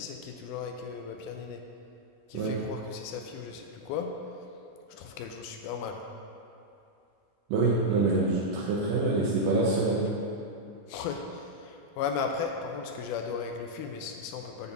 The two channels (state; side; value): normal; both; correlation -0.05